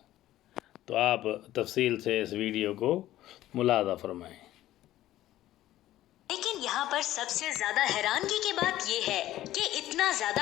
तो आप तफसील से इस वीडियो को मुलादा फरमाएं। लेकिन यहाँ पर सबसे ज्यादा हैरानगी की बात यह है कि इतना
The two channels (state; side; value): quieter; right; 14.4 dB